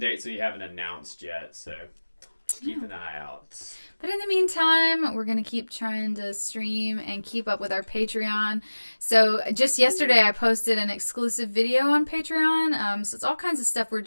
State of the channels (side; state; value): both; inverted; correlation -1.00